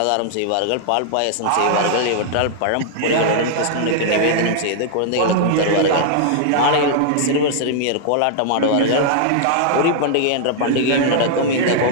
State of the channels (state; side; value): different; both; correlation -0.01